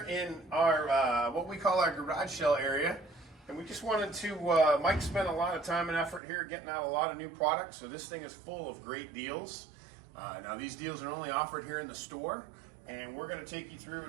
in our, what we call our garage sale area. And we just wanted to, Mike spent a lot of time and effort here getting out a lot of new products. So this thing is full of great deals. Now these deals are only offered here in the store. And we're gonna take you through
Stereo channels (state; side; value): drops out; left; at 6.2 s